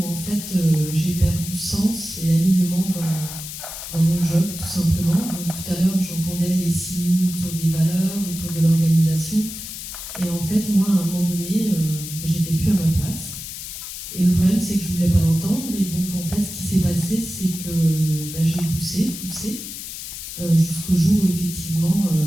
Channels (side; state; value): left; noise; hiss, 9 dB below the sound